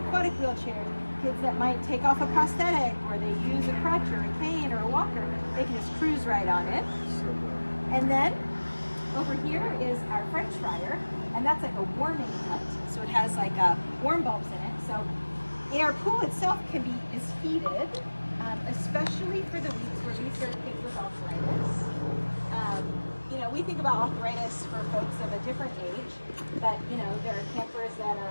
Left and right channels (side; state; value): both; inverted; correlation -1.00